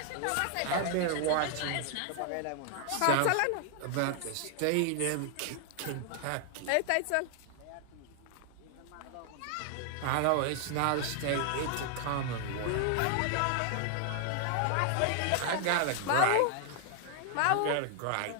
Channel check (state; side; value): different; both; correlation 0.00